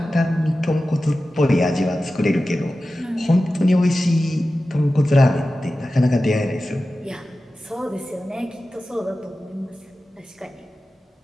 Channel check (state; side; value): normal; both; correlation 0.94